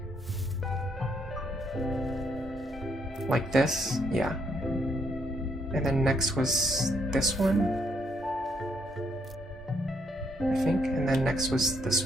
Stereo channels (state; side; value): normal; both; correlation 0.72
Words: Like this, yeah. And then next was this one, I think, and then next was this